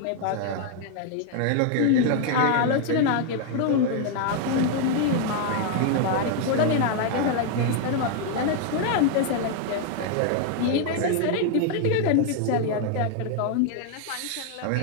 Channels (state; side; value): different; both; correlation 0.00